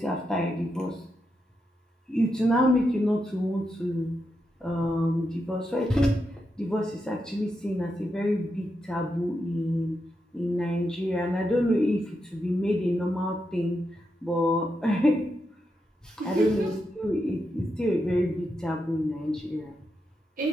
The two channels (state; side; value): normal; both; correlation 0.85